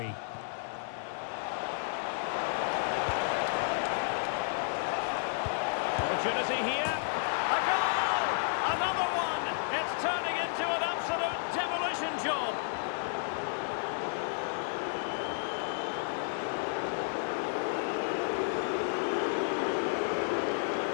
Opportunity here. A goal! Another one! It's turning into an absolute demolition job.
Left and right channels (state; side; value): silent; right; digital silence